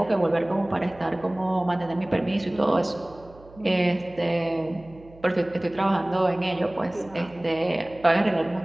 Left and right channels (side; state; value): right; noise; hum, 23 dB below the sound